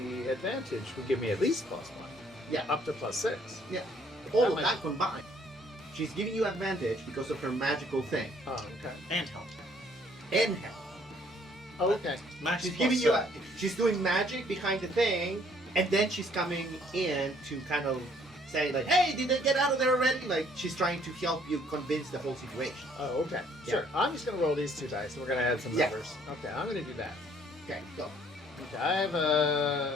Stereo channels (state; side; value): normal; both; correlation 0.62